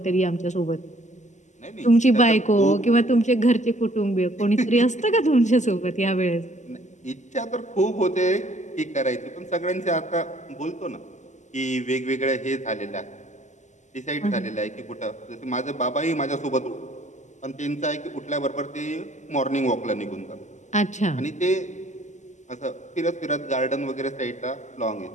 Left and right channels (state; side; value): late; right; 0.34 ms